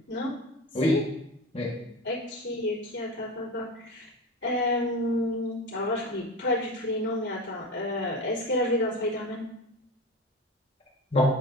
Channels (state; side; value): normal; both; correlation 0.27